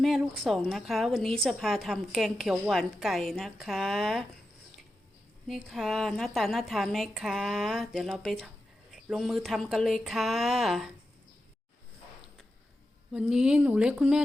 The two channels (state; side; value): normal; both; correlation 0.90